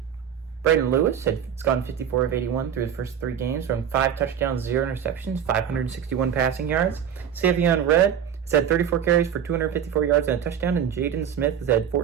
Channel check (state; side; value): quieter; left; 8.7 dB